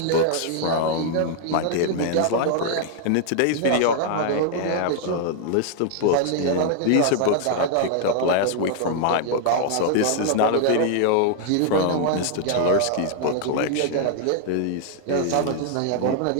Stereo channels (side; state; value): both; different; correlation 0.00